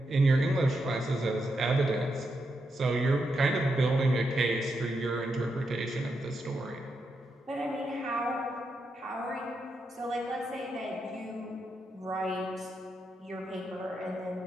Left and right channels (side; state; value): both; normal; correlation 0.84